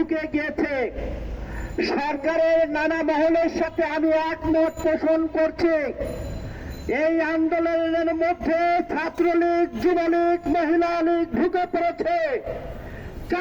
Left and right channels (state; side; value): identical; both; correlation 1.00